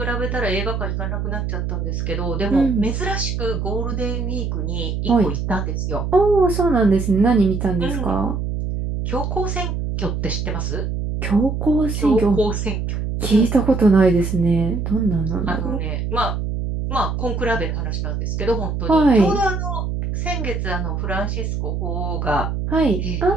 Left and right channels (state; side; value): noise; right; hum, 2 dB below the sound